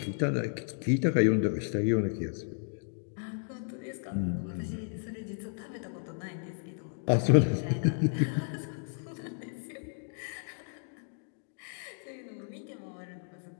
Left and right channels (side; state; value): right; silent; 56 dB below the other